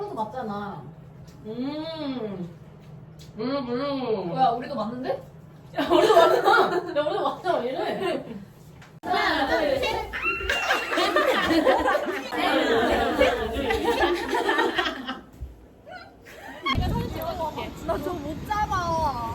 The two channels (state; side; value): identical; both; correlation 1.00